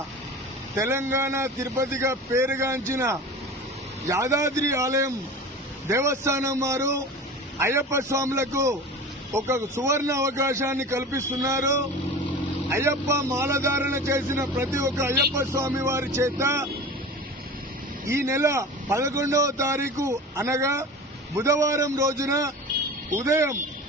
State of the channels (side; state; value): both; normal; correlation 0.34